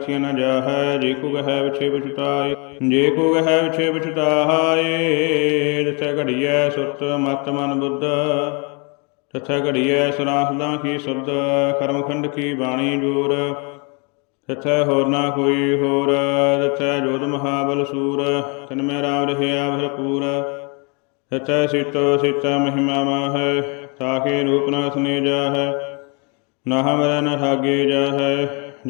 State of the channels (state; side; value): quieter; right; 33.1 dB